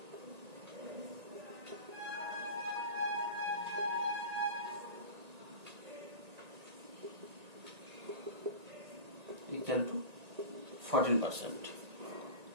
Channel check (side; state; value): left; late; 1.8 ms